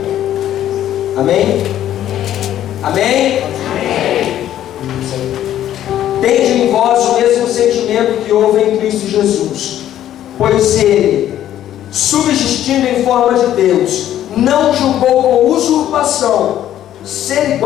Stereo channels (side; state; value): right; quieter; 11.8 dB